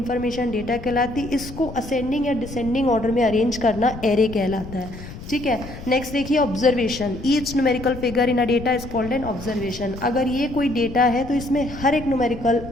डेटा कहलाती. इसको असेंडिंग या डिसेंडिंग ऑर्डर में अरेंज करना एरे कहलाता है. ठीक है, नेक्स्ट देखिए observation. Each numerical figure in a data is called N observation. अगर ये कोई डेटा है तो इसमें हर एक न्यूमेरिकल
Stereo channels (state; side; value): noise; left; rumble, 13 dB below the sound